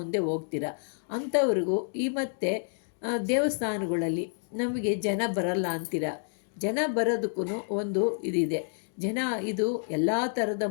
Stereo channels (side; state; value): right; silent; digital silence